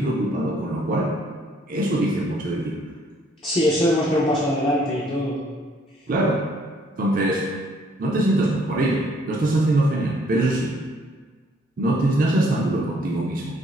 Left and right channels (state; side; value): normal; both; correlation 0.64